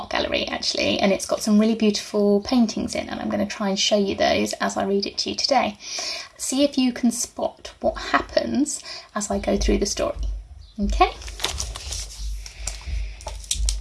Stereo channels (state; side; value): identical; both; correlation 1.00